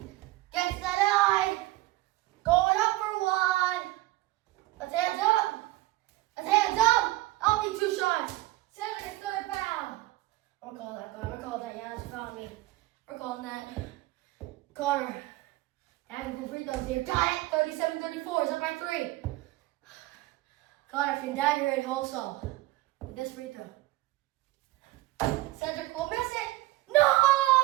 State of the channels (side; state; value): left; quieter; 18.4 dB